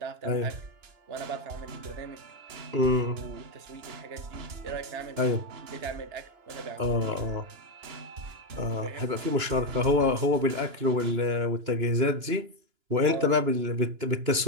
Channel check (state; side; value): late; left; 2.9 ms